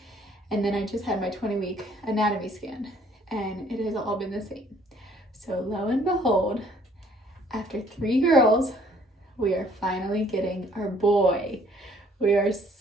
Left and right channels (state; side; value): normal; both; correlation 0.60